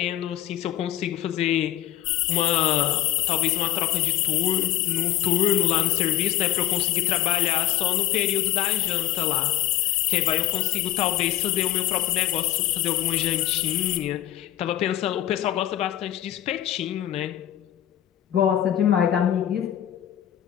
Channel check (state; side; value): quieter; right; 12.9 dB